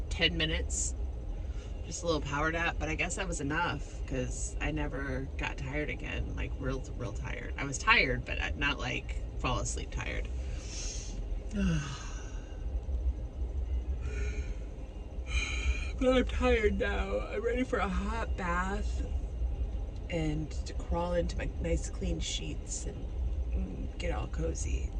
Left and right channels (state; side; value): identical; both; correlation 1.00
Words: 10 minutes, just a little power nap, but I guess that was enough because I never got tired again, like real tired. I was tired, but not like fall asleep tired. But I'm tired now. I'm ready for a hot bath and to crawl into my nice clean sheets and get all cozy.